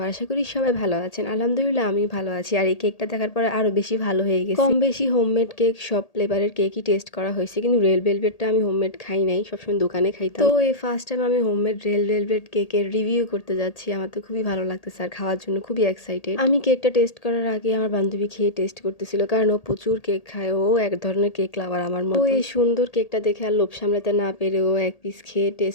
আশা করি সবাই ভালো আছেন। আলহামদুলিল্লাহ আমি ভালো আছি। আর এই কেকটা দেখার পরে আরো বেশি ভালো হয়ে গেছে। কম বেশি হোমমেড কেক, সব ফ্লেভারের কেকই টেস্ট করা হয়েছে, কিন্তু রেড ভেলভেটটা আমি হোমমেড খাই নাই, সবসময় দোকানে খাইতাম। তো এই ফার্স্ট টাইম আমি হোমমেড রেড ভেলভেট কেকের রিভিউ করতে যাচ্ছি। আমার তো খুবই ভালো লাগতেছে আর খাওয়ার জন্য খুবই এক্সাইটেড। আমি কেকটা টেস্ট করার আগে আমার বান্ধবী খেয়ে টেস্ট করতেছিল, কারণ ও প্রচুর কেক খায়, ও এক ধরনের কেক লাভার আমার মতো। ও এই সুন্দর কেকটা দেখে আর লোভ সামলাতে না পেরে ও এক পিস খেয়ে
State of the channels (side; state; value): right; late; 1.8 ms